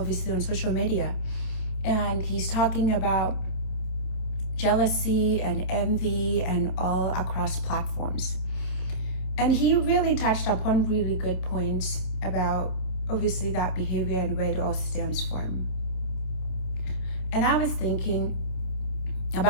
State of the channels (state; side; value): late; right; 27 ms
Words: on social media, and he's talking about jealousy and envy and all across platforms. And he really touched upon really good points about obviously that behavior and where it all stems from. And I was thinking